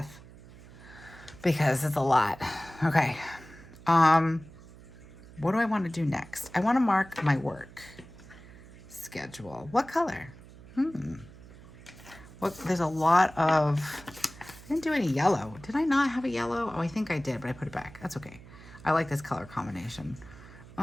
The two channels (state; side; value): noise; right; hum, 19 dB below the sound